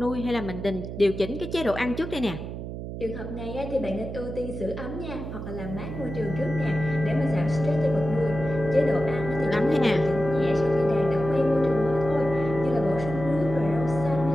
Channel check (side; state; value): right; noise; hum, 8 dB below the sound